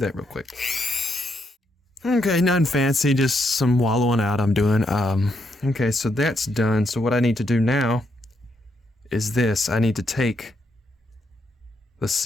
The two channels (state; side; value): normal; both; correlation 0.78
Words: real quick. Okay, nothing fancy, just some wallowing out I'm doing. Okay, so that's done. So what I need to do now is this. I need to take, let's